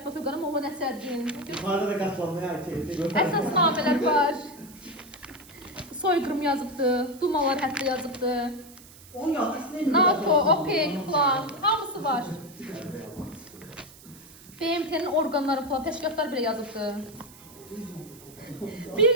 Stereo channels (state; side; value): noise; right; hiss, 21 dB below the sound